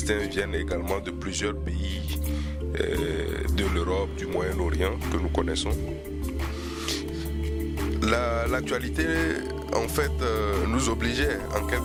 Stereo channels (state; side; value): identical; both; correlation 1.00